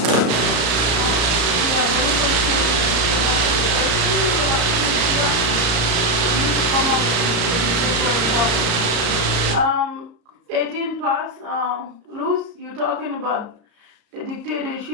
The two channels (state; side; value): late; left; 34 ms